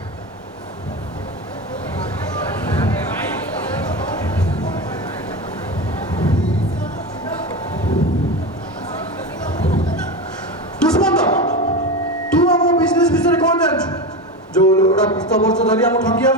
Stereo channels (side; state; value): both; normal; correlation 0.21